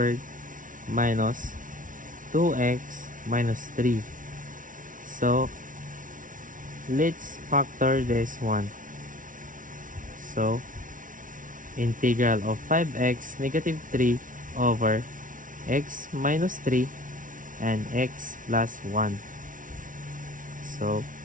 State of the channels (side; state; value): left; late; 0.38 ms